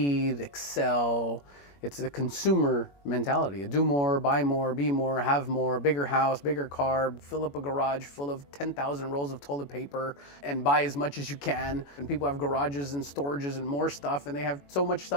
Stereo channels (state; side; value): late; right; 21 ms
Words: excel. It's a consumer mentality. Do more, buy more, be more, have more, bigger house, bigger car, fill up a garage full of 10,000 rolls of toilet paper and buy as much as you can. And people have garages and storages and more stuff, and they have so much